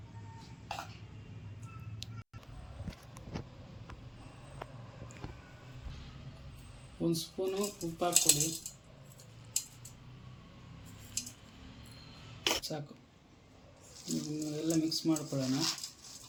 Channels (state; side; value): identical; both; correlation 1.00